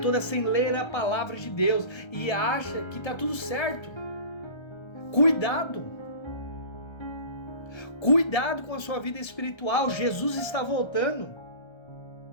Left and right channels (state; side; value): late; right; 1.3 ms